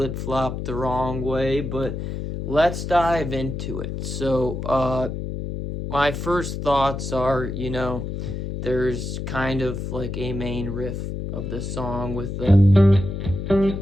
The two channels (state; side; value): noise; left; hum, 5 dB below the sound